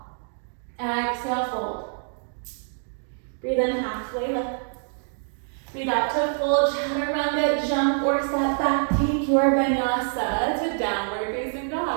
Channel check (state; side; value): silent; left; digital silence